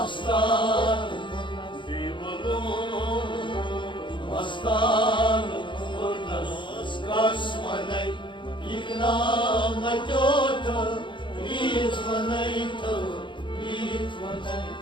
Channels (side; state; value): right; late; 0.23 ms